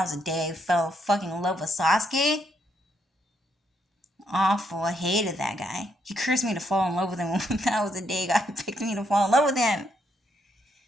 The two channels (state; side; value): normal; both; correlation 0.76